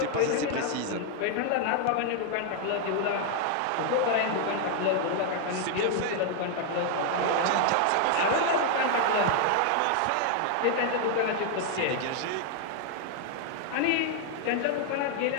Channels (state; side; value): different; both; correlation 0.00